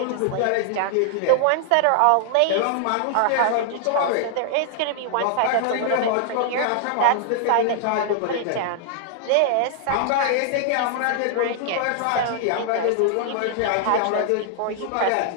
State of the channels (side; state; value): both; different; correlation -0.01